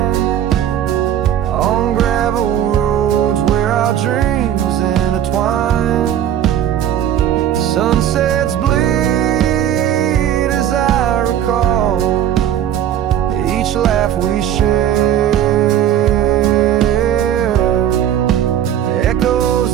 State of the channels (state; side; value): quieter; left; 10.4 dB